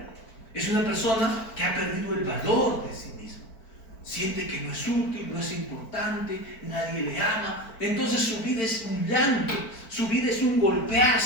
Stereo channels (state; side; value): late; right; 4.5 ms